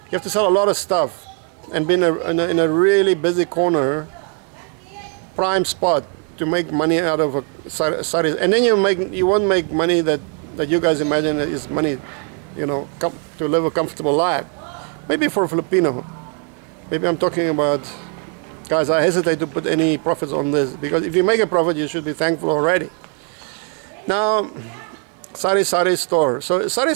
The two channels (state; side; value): quieter; left; 38.9 dB